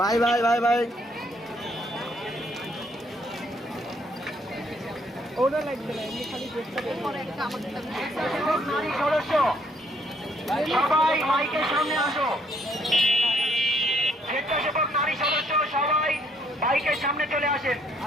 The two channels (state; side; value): normal; both; correlation 0.68